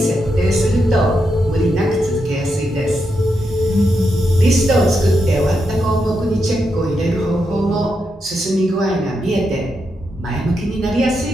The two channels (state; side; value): normal; both; correlation 0.84